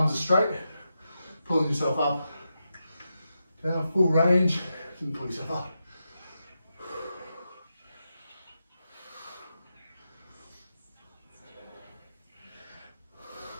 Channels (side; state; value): both; inverted; correlation -0.88